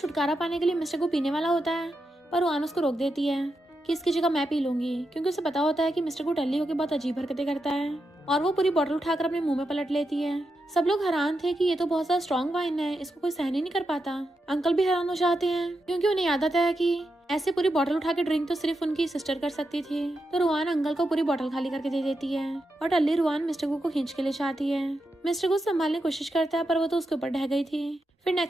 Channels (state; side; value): normal; both; correlation 0.86